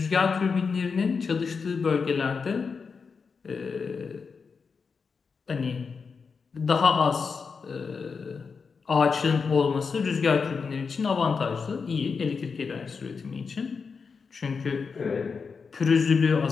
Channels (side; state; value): right; quieter; 5.3 dB